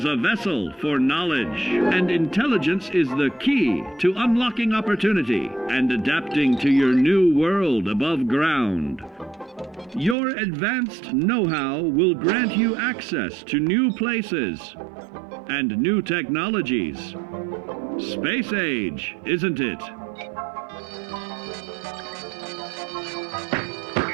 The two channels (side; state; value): left; drops out; at 10.2 s